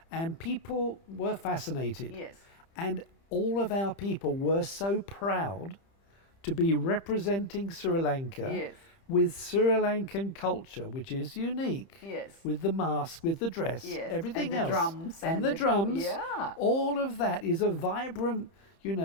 and people were fascinated. Yes. And all of our people were so proud to be representing Sri Lanka Yes. with Sri Lankan culture, which is unique. Yes. With the mask, with the dress, Yes. everything And the else. drums and and the the- drums. yeah. All of that is a vibrant,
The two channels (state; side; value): late; right; 30 ms